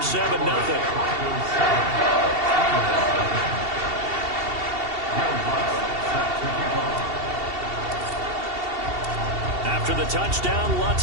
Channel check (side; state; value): left; late; 2.7 ms